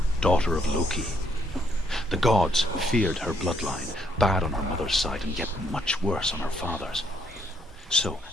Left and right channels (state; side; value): normal; both; correlation 0.71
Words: daughter of Loki. The gods feared her bloodline, bad on her mother's side and yet much worse on her father's. So,